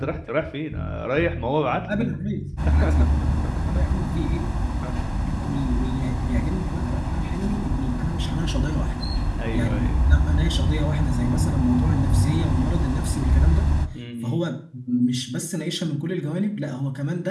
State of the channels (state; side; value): identical; both; correlation 1.00